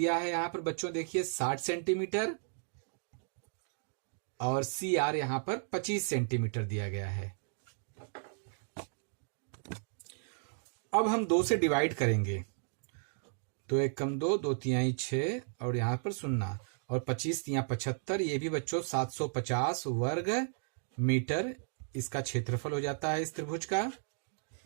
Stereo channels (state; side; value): silent; left; digital silence